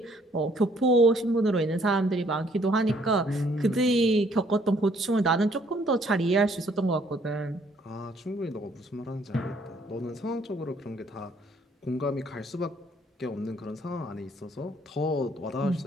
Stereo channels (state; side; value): normal; both; correlation 0.64